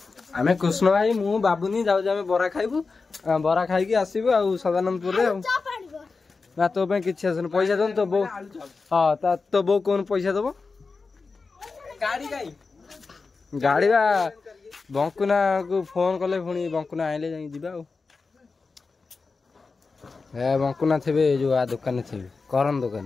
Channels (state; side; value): quieter; right; 4.3 dB